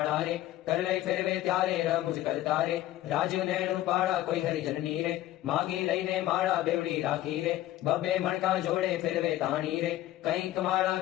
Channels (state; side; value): quieter; right; 14.6 dB